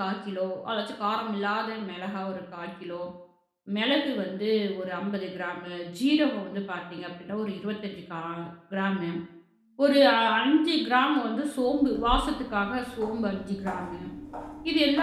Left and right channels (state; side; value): identical; both; correlation 1.00